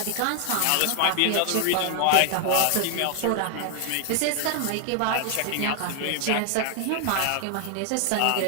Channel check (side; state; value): both; different; correlation 0.00